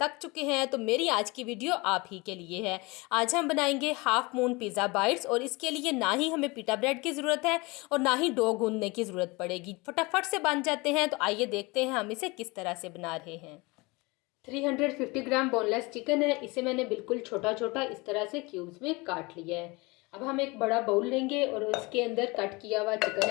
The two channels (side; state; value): right; quieter; 25.1 dB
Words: चुके हैं तो मेरी आज की वीडियो आप ही के लिए है। आज हम बनाएंगे हाफ मून पिज़्ज़ा बाइट्स और इसके लिए ना ही हमें पिटा ब्रेड की ज़रूरत है और ना ही डो गूंदने की ज़रूरत पड़ेगी, फटाफट से बन जाते हैं। तो आइए देखते हैं हम इसे किस तरह से बना रहे हैं। 350 ग्राम बोनलेस चिकन है, इसे मैंने बिल्कुल छोटा छोटा इस तरह से क्यूब्स में काट लिया है। अब हम एक बड़ा बाउल लेंगे और उसके अंदर कट किया हुआ चिकन